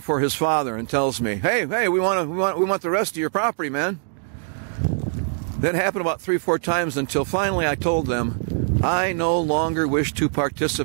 his father and tells me, "Hey, we want the rest of your property, man." That happened about 3 or 4 times until finally I told them, "I no longer wish to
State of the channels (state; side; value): silent; left; digital silence